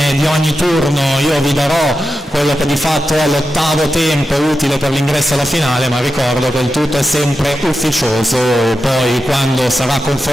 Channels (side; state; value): both; normal; correlation 0.90